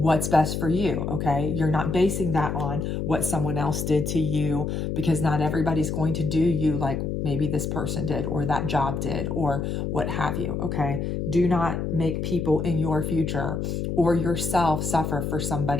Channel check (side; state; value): left; noise; hum, 2 dB below the sound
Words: best for you, okay? You're not basing that on what someone else did to you, because not everybody's going to do you like maybe this person did or that job did or what have you, okay? Do not make people in your future or yourself suffer for